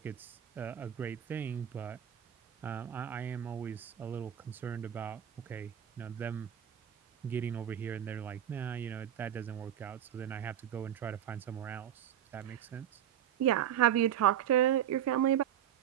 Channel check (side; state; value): left; quieter; 10.3 dB